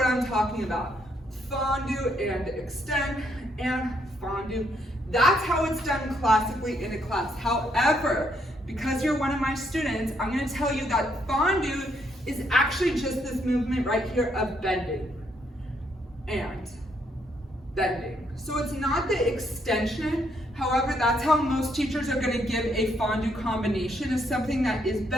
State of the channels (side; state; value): both; normal; correlation 0.73